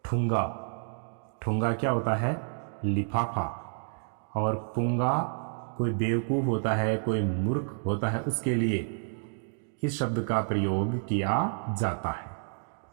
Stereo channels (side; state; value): left; silent; digital silence